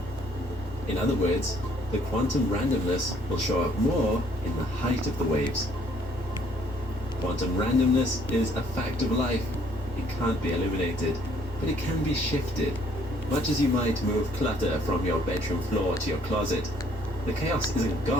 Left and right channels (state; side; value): normal; both; correlation 0.63